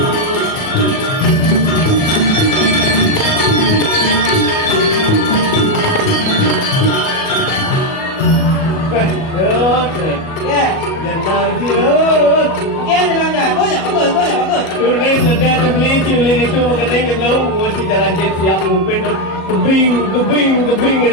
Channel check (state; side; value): late; right; 37 ms